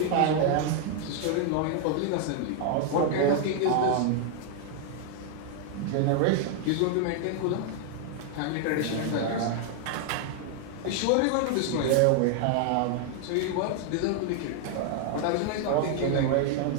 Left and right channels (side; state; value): both; different; correlation 0.00